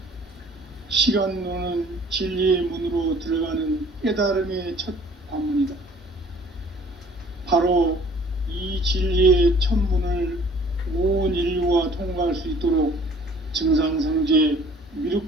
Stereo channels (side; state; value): both; normal; correlation 0.53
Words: 시간론은 진리의 문으로 들어가는 깨달음의 첫 관문이다. 바로 이 진리의 첫 문을 온 인류가 통과할 수 있도록 증산상제